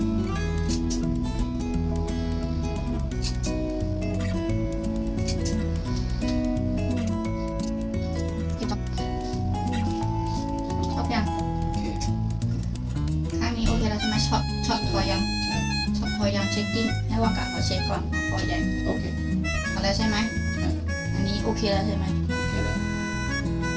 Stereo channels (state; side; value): identical; both; correlation 1.00